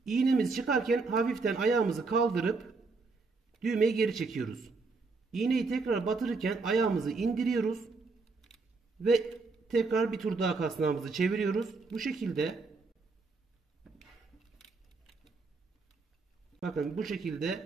İğnemiz çıkarken hafiften ayağımızı kaldırıp düğmeyi geri çekiyoruz. İğneyi tekrar batırırken ayağımızı indiriyoruz. Ve tekrar bir tur daha kasnağımızı çeviriyoruz. Bu şekilde bakın bu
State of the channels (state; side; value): quieter; left; 4.0 dB